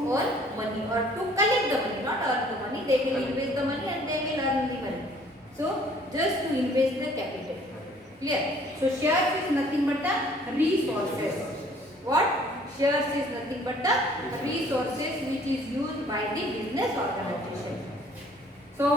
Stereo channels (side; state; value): both; normal; correlation 0.57